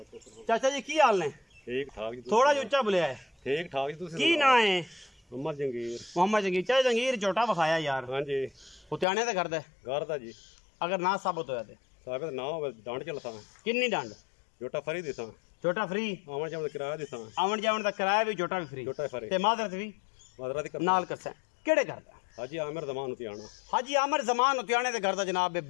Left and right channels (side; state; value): right; drops out; at 9.1 s